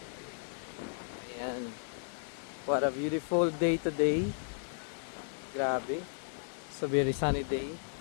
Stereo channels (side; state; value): right; silent; digital silence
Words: Ayan. What a beautiful day today. Grabe. So very sunny day.